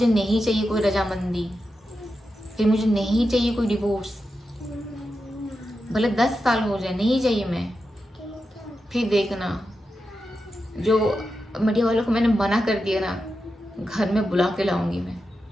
नहीं चाहिए कोई रजामंदी, फिर मुझे नहीं चाहिए कोई डिवोर्स, भले 10 साल हो जाए, नहीं चाहिए मैं। फिर देखना, जो मीडिया वालों को मैंने मना कर दिया ना, घर में बुला के लाऊंगी मैं।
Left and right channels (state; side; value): normal; both; correlation 0.89